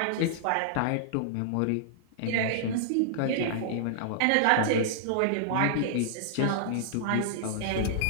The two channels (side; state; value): both; different; correlation -0.01